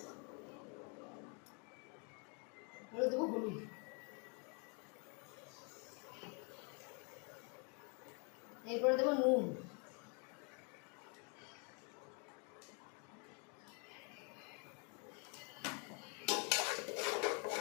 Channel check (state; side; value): quieter; right; 36.6 dB